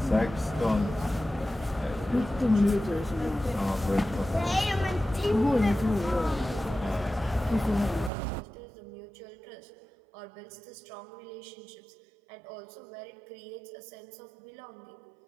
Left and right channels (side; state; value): left; drops out; at 8.1 s